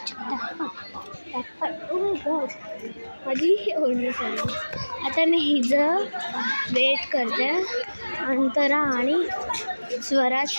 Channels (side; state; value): both; inverted; correlation -1.00